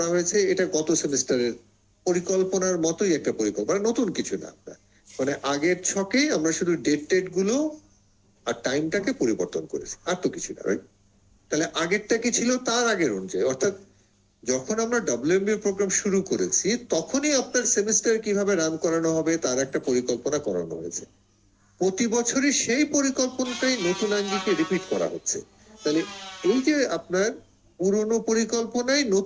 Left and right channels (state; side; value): identical; both; correlation 1.00